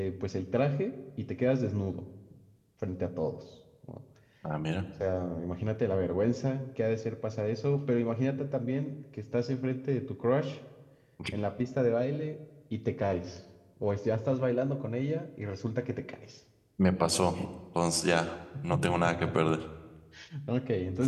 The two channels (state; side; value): identical; both; correlation 1.00